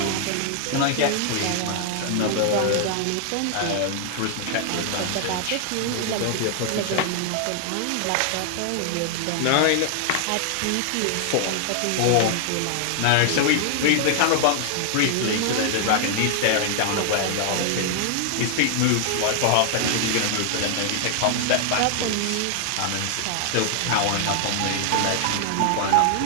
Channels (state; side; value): different; both; correlation 0.00